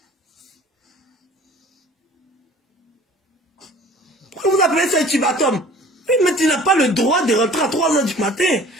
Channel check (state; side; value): normal; both; correlation 0.48